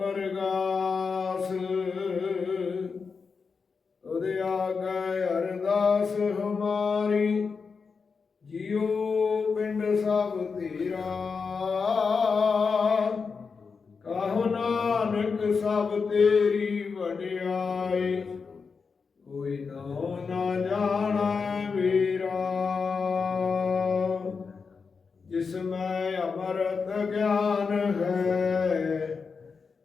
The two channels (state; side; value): quieter; right; 5.2 dB